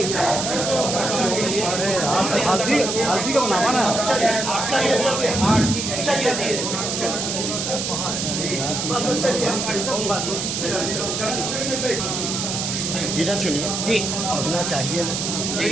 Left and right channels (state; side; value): noise; right; hiss, 2 dB below the sound